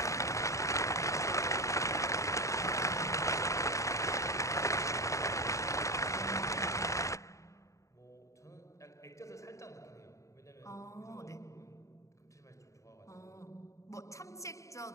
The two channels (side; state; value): right; late; 0.15 ms